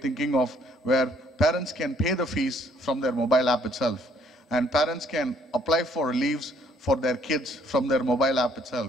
thinking of where parents can pay the fees from their mobile app itself. And parents can apply for leaves for their kids from their mobile app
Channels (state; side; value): normal; both; correlation 0.64